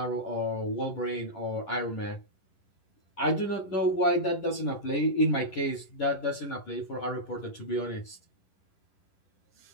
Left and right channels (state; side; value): late; right; 11 ms